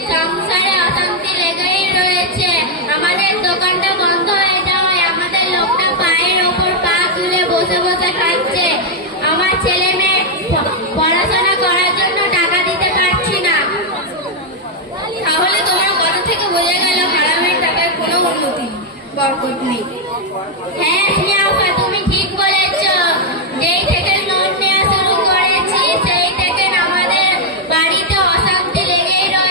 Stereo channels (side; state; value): both; normal; correlation 0.00